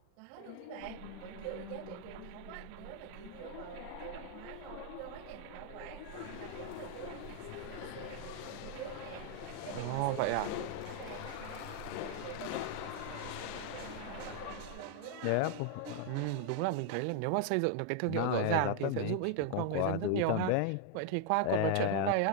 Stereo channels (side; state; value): both; different; correlation 0.00